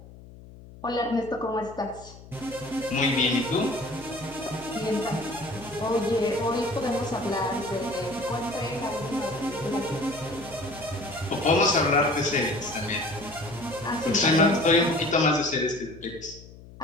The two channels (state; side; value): noise; left; hum, 19 dB below the sound